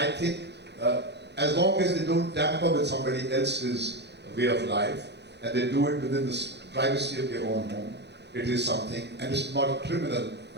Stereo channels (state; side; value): late; left; 0.50 ms